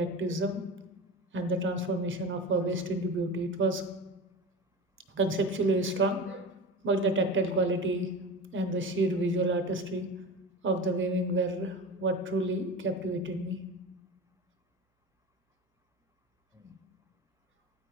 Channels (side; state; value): both; normal; correlation 0.30